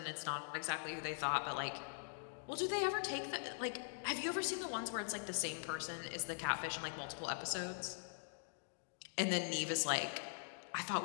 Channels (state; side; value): silent; right; digital silence